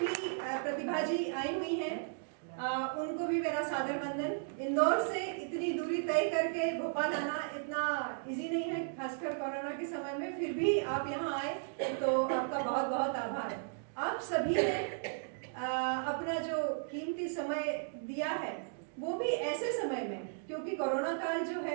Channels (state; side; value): silent; left; digital silence